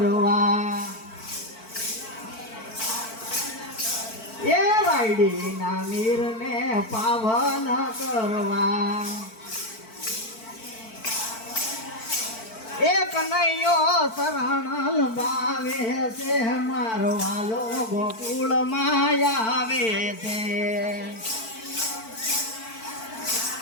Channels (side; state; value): right; late; 4.5 ms